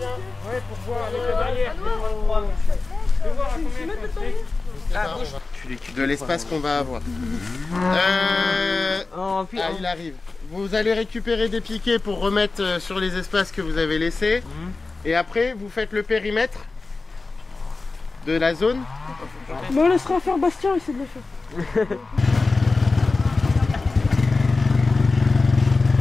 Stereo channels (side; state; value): right; quieter; 3.7 dB